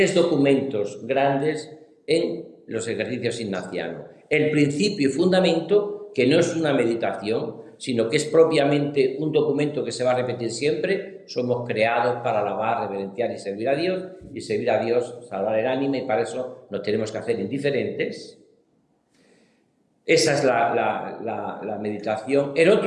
documentos grandes en los ejercicios ignacianos. El principio y fundamento, que no es una meditación, sino que es propiamente un documento que se va a repetir siempre. Somos creados para alabar, reverenciar y servir a Dios, salvar el ánima, y para eso nos tenemos que hacer indiferentes. Esa es la meditación. El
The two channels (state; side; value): identical; both; correlation 1.00